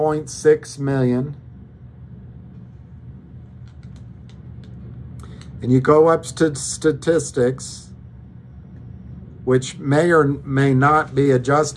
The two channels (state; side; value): identical; both; correlation 1.00